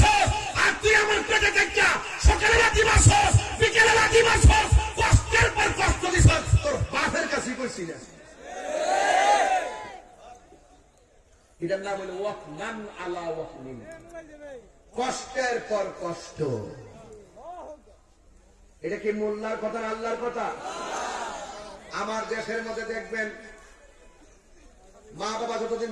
আর তুই আমার পেটে দেখা সকালে লাথি মারছস, বিকেলে লাথি মারছস, কষ্টের পর কষ্ট দিছ, তোর বাপের কাছে কইছি না। এটার নাম হলো ওয়াকমান আলা ওয়াকমিন, কষ্টের পর কষ্ট। এটা কি মোল্লার কথা না আল্লাহর কথা? আমার দেশের মধ্যে দেখবেন মা বাবা যতদিন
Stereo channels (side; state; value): both; identical; correlation 1.00